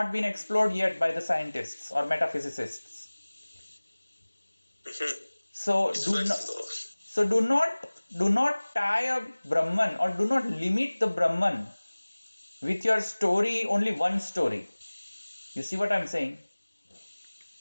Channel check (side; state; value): both; inverted; correlation -1.00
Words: been explored yet by the scientists or metaphysicists. So do not tie a Brahman, or do not limit the Brahman with your story, only one story. You see what I'm saying?